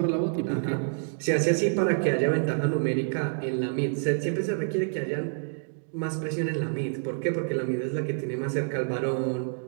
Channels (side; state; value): left; silent; digital silence